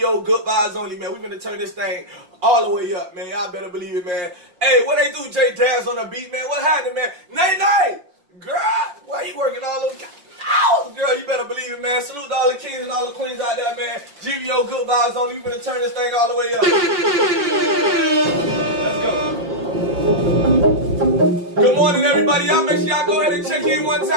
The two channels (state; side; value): late; left; 5.7 ms